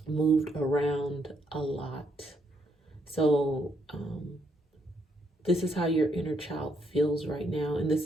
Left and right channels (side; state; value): both; normal; correlation 0.75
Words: moved around a lot. So this is how your inner child feels right now, and